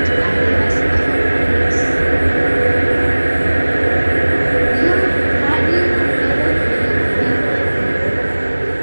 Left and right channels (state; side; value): inverted; both; correlation -1.00